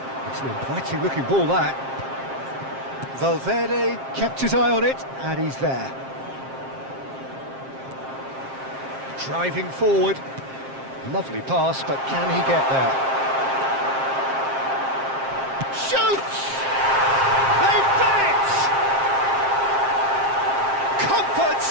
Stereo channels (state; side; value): late; left; 7.5 ms